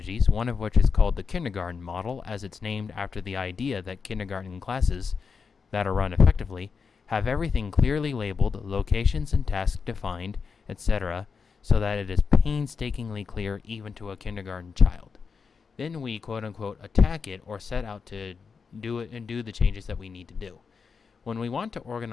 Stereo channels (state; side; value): quieter; right; 5.5 dB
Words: one of which is called the kindergarten model, as it's named after the idea that kindergarten classes that are run effectively have everything clearly labeled, locations and tasks defined, etc., so that it is painstakingly clear even to a kindergarten child. Then we quote-unquote attack it or set out to do it and do the changes that we need to do. When we want to